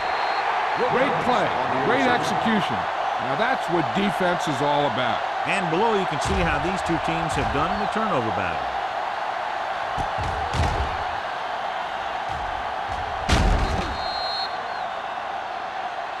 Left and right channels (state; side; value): identical; both; correlation 1.00